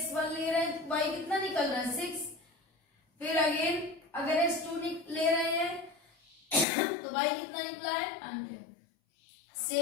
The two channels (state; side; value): drops out; right; at 6.7 s